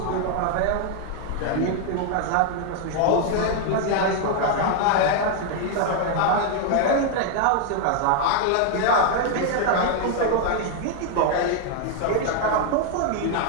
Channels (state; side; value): different; both; correlation 0.00